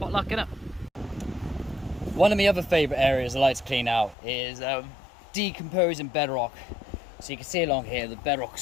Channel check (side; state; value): right; drops out; at 4.2 s